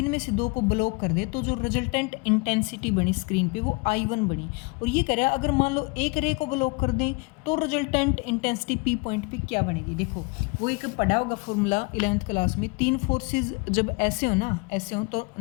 में से 2 को ब्लॉक कर दे तो जो रिजल्टेंट इंटेंसिटी बनी स्क्रीन पे वो I1 बनी। और ये कह रहा है अगर मान लो एक रे को ब्लॉक कर दें तो रिजल्टेंट इंटेंसिटी पी पॉइंट पे क्या बनेगी। देखो वो एक पढ़ा होगा फॉर्मूला 11th क्लास में, 3 फोर्सेज जब ऐसे हो ना, ऐसे हो तो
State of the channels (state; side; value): quieter; right; 29.3 dB